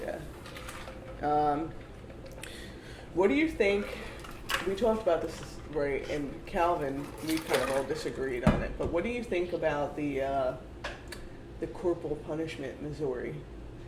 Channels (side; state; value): both; identical; correlation 1.00